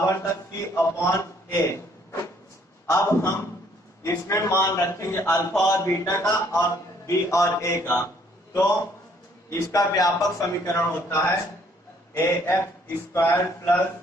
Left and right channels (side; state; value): both; normal; correlation 0.63